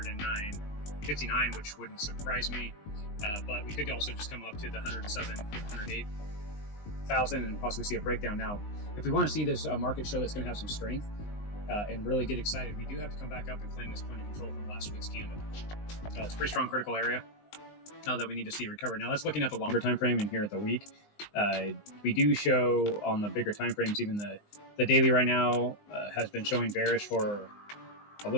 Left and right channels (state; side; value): late; right; 19 ms